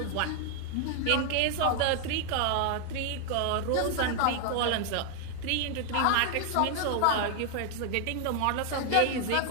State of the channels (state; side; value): different; both; correlation 0.00